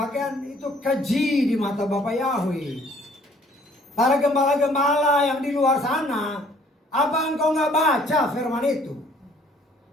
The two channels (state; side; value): normal; both; correlation 0.59